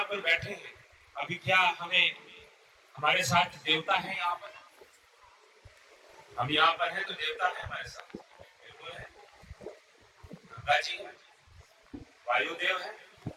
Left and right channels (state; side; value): identical; both; correlation 1.00